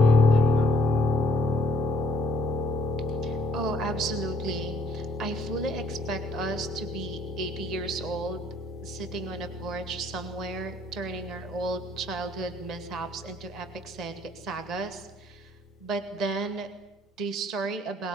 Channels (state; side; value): normal; both; correlation 0.63